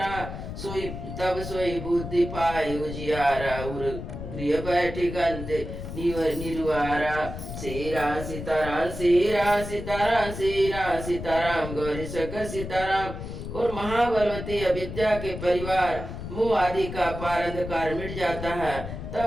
तब सोई बुद्धि पाई उजियारा उर गृह बैठी गंत निर्वारा। श्री राम सीताराम श्री राम सीताराम श्री राम सीताराम गौरी सकल सीताराम। और महाबलवती अविद्या के परिवार मोह आदि का पारंधकार मिट जाता है,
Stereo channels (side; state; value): left; noise; rumble, 8 dB below the sound